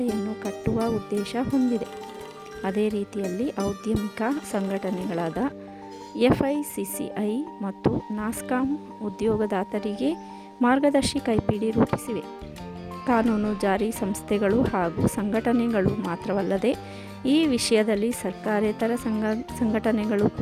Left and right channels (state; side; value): identical; both; correlation 1.00